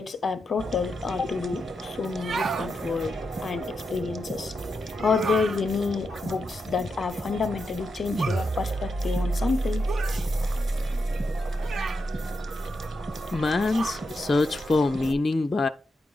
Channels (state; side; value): normal; both; correlation 0.85